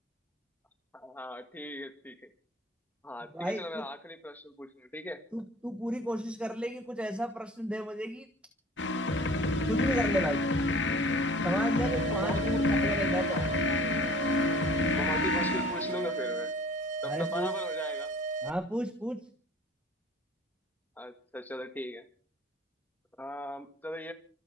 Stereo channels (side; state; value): both; normal; correlation 0.48